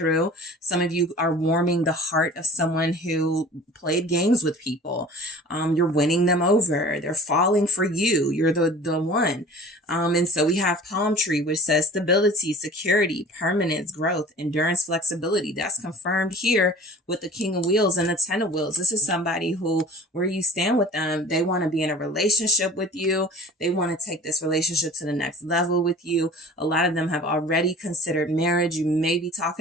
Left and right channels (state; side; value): normal; both; correlation 0.43